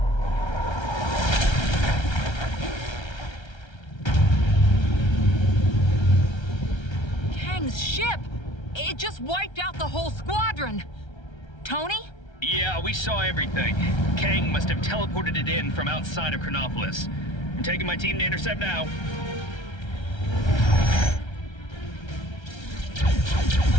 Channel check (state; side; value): late; right; 1.3 ms